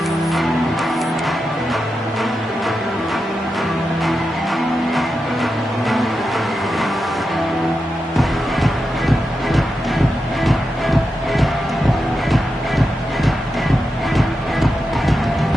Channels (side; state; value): both; normal; correlation 0.89